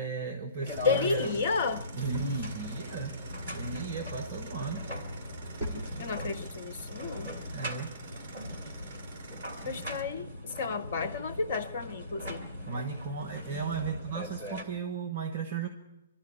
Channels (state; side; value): inverted; both; correlation -0.46